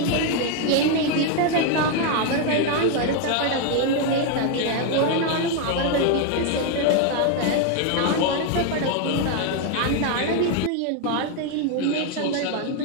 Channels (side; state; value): both; different; correlation 0.01